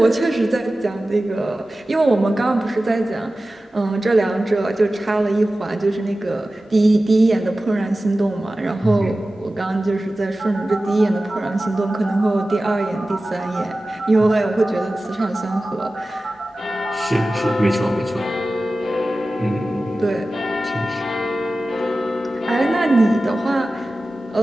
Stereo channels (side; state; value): both; normal; correlation 0.96